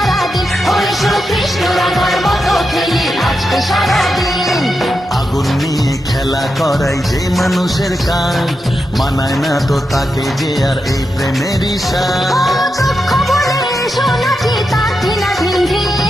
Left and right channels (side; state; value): both; normal; correlation 0.87